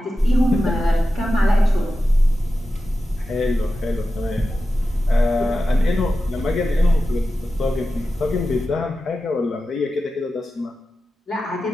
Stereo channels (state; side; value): normal; both; correlation 0.92